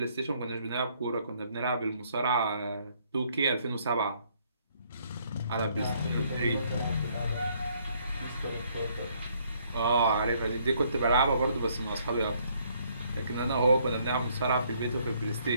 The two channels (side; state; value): both; inverted; correlation -0.67